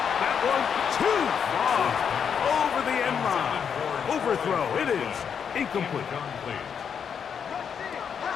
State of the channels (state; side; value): quieter; right; 7.3 dB